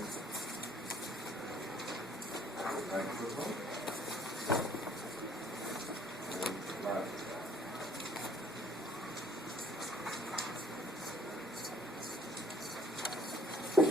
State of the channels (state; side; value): normal; both; correlation 0.58